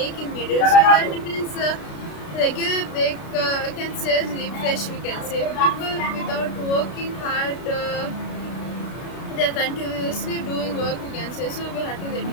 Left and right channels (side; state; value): right; late; 32 ms